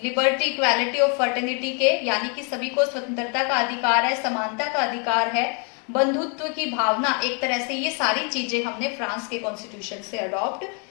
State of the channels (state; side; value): quieter; right; 35.8 dB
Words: लिबर्टी, इक्वालिटी और फर्टिनिटी के, यानी कि सभी को स्वतंत्रता का अधिकार है, समानता का अधिकार है, बंधुत्व की भावना, एक तरह से ये सारी चीजें हमने फ्रांस के कॉन्स्टिट्यूशन से अडॉप्ट